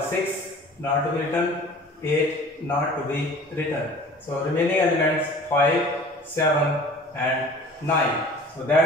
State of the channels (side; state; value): both; normal; correlation 0.45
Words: not to be written, 8 not to be written. So remaining elements 5, 7 and 9. So